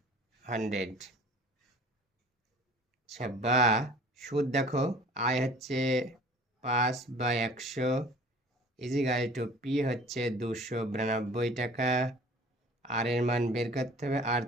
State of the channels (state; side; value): normal; both; correlation 0.47